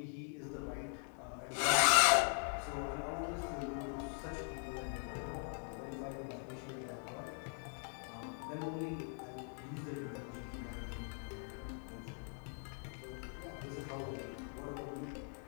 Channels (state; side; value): silent; right; 50 dB below the other